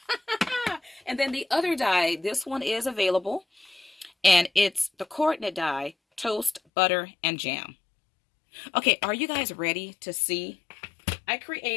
And then the other die, this one is available. And it's the coordinate die, toast, butter, and jam. Okay, are you guys ready to see? I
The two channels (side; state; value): right; drops out; at 6.6 s